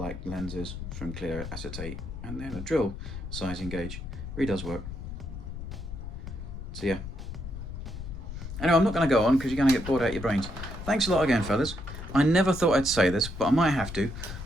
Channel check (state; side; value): noise; left; rumble, 9 dB below the sound